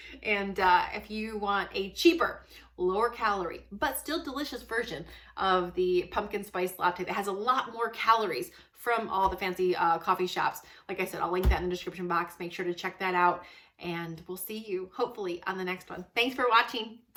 And if you want a cheaper, lower calorie, but still delicious version of the pumpkin spice latte that has a lot more calories from all the fancy coffee shops, like I said, I'll link that in the description box. Make sure to check that out. And we'll see you, hopefully, on the next one. Thanks for watching.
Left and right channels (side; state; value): both; identical; correlation 1.00